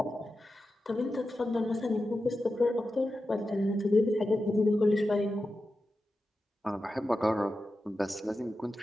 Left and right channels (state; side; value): normal; both; correlation 0.91